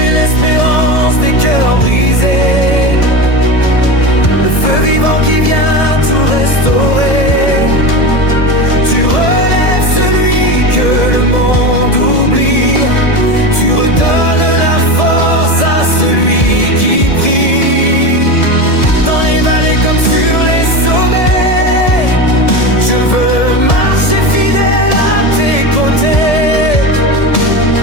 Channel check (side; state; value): right; late; 1.7 ms